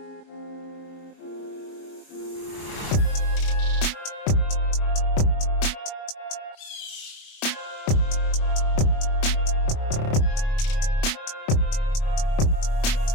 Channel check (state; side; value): late; right; 29 ms